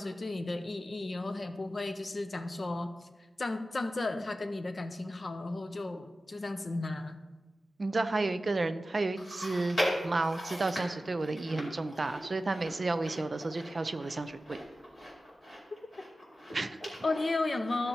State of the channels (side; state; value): both; normal; correlation 0.94